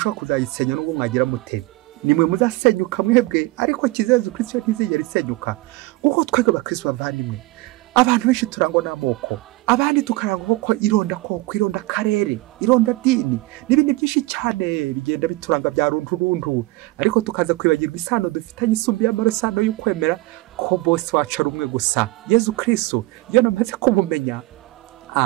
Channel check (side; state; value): left; quieter; 20.8 dB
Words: kuzayisenya n'ubwo mwagira mute. Nimwe muzasenyuka mwebwe, ariko kiza Yezu Kristo ntizigera isenyuka. Kuko twebwe abakristo bavandimwe, abantu benshi turangwa n'amoko, abandi tukarangwa ko ironda koko, ironda karere, ironda dini n'ibindi byinshi cyane bigenda bituranga bya runturuntu, ariko tukaza kwibagirwa isano dufitanye isumbi y'amarosano y'ukwemera ko bose wacu ari umwe gusa, Yezu Kristo. Iyo namaze kumumenya,